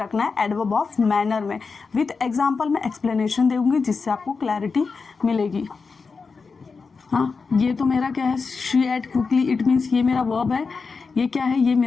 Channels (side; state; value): right; quieter; 4.8 dB